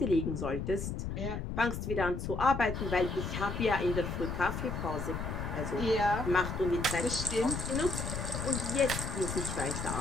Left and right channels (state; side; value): noise; left; rumble, 4 dB below the sound